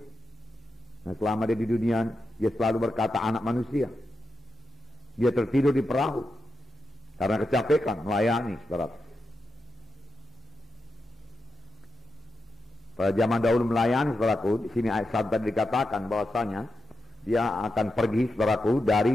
Nah, selama dia di dunia, dia selalu berkata anak manusia. Dia tertidur di perahu karena kecapekan melayani, saudara. Pada zaman dahulu melayani, saudaraku, di sini ayat 1 tadi dikatakan bahwasanya dia akan pergi, saudaraku,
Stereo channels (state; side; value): normal; both; correlation 0.88